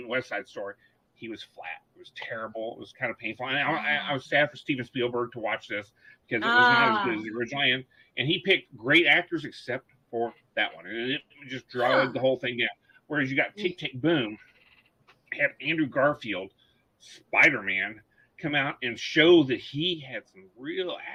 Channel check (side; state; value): both; identical; correlation 1.00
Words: West Side Story. He was flat. It was terrible. It was kind of painful. And I was sad for Steven Spielberg to watch this, because it was not as good as the original. And he picked great actors except for that one. And it just dragged the whole thing down. Whereas you got Tick, Tick, Boom, had Andrew Garfield, Spider-Man, come out and show that he had some real